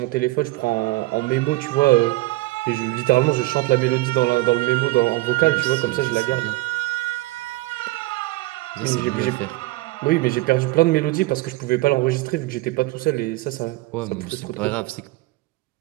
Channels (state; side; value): quieter; left; 20.1 dB